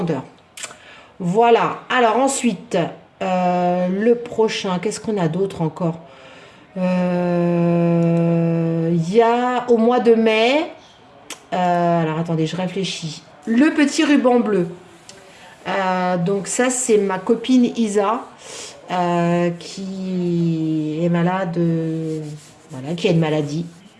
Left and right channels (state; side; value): identical; both; correlation 1.00